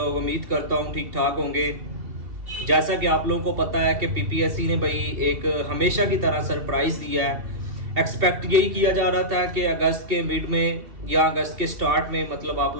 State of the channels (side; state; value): left; late; 2.7 ms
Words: उम्मीद करता हूँ ठीक ठाक होंगे। जैसा कि आप लोगों को पता है कि पीपीएससी ने भाई एक हमेशा की तरह सरप्राइज़ दिया है। एक्सपेक्ट यही किया जा रहा था कि अगस्त के मिड में या अगस्त के स्टार्ट में मतलब आप